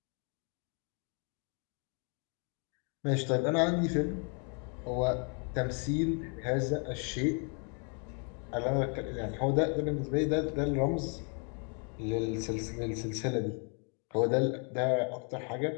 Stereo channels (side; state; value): right; quieter; 39.5 dB